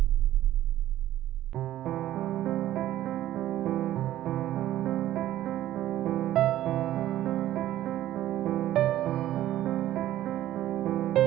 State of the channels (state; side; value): quieter; left; 13.4 dB